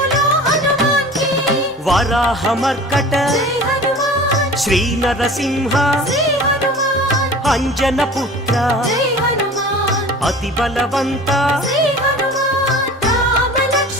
హనుమాన్ కి వరాహమర్కట జై హనుమాన్ శ్రీ నరసింహ శ్రీ హనుమాన్ అంజన పుత్ర జై హనుమాన్ అతి బలవంత శ్రీ హనుమాన్ రామ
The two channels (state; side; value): normal; both; correlation 0.40